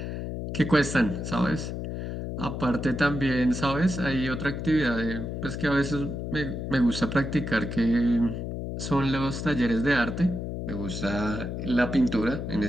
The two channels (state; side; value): noise; left; hum, 5 dB below the sound